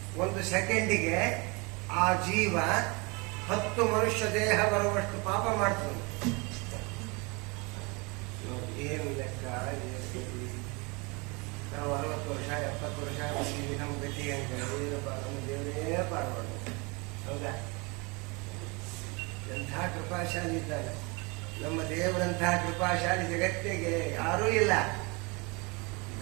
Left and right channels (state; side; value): quieter; left; 28.7 dB